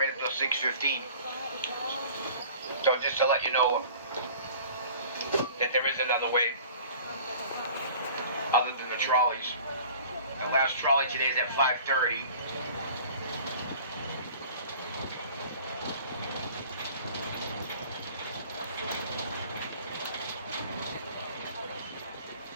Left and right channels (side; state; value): both; inverted; correlation -0.46